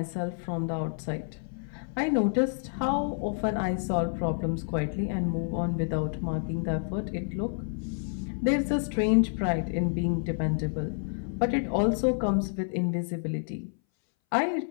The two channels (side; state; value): right; silent; 59 dB below the other